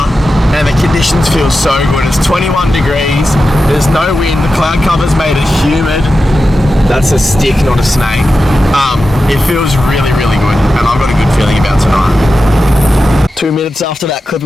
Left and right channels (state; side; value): normal; both; correlation 0.92